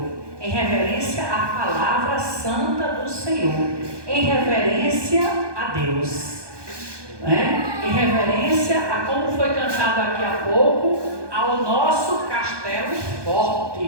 em reverência à palavra santa do Senhor, em reverência a Deus, né? Em reverência a como foi cantado aqui há pouco, ao nosso castelo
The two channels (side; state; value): left; late; 1.2 ms